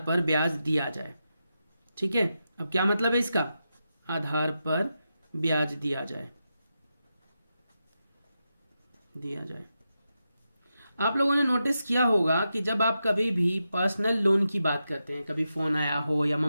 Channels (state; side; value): inverted; both; correlation -0.88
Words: ब्याज दिया जाए, ठीक है। अब क्या मतलब है इसका? आधार पर ब्याज दिया जाए, दिया जाए। आप लोगों ने नोटिस किया होगा कि जब आप कभी भी पर्सनल लोन की बात करते हैं, कभी फोन आया हो या